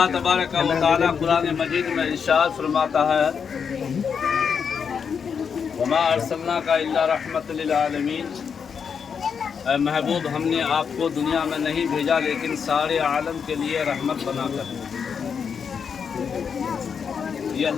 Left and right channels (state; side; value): quieter; right; 6.6 dB